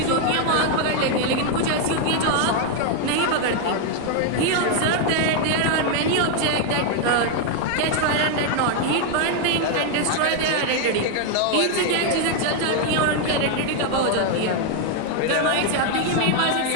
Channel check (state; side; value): different; both; correlation 0.00